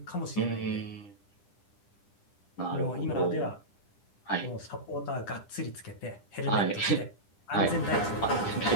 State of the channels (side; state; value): right; late; 10 ms